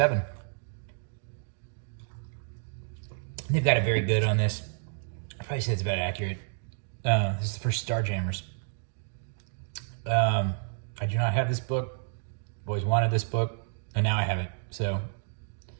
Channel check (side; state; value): left; silent; digital silence